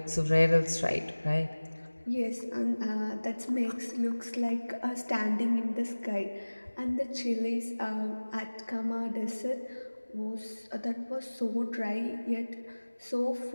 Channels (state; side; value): inverted; both; correlation -1.00